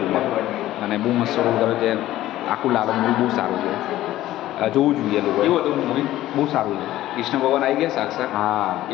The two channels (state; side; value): quieter; right; 14.7 dB